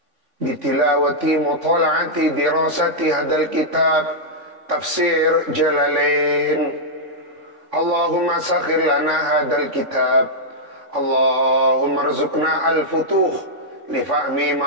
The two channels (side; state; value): left; late; 3.5 ms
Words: bitilawati mutala'ati dirasati hadal kitab tafsir Jalalain. Allahumma sakhir lana hadal kitab. Allahumma rzuqna al-futuh li fahmi